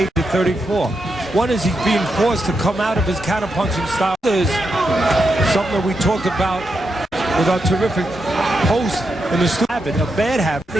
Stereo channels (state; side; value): normal; both; correlation 0.84